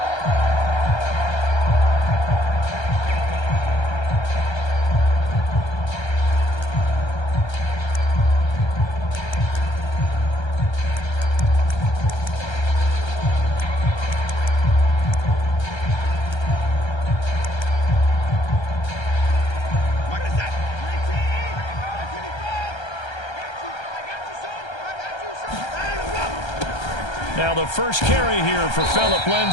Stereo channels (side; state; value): right; late; 1.3 ms